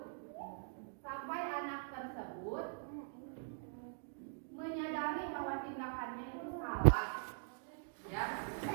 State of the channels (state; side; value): silent; left; digital silence